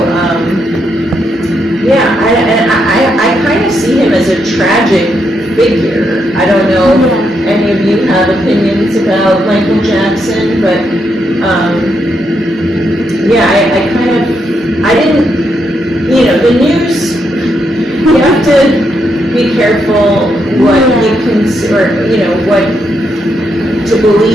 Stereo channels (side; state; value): both; normal; correlation 0.80